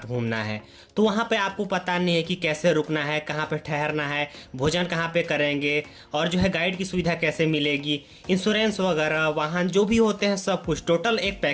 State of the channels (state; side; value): identical; both; correlation 1.00